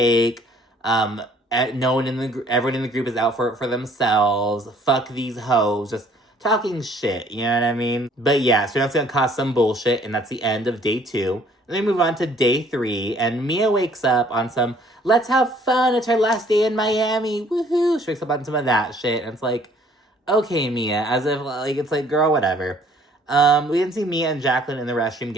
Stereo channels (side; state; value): both; normal; correlation 0.59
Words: Everyone in the group is out for themselves. Fuck these hoes. Just talking shit, you know what I mean? But yeah, so that's gonna cause some bullshit, and that's the end of day 2. And then we move on to day 3, and Mia wakes up on some, let's have fun, it's her last day in Miami, woohoo! She wakes up on some of that shit, and it's like, okay, Mia, as if, like, it's like, girl, whatever. We didn't see Mia and Jacqueline in the restroom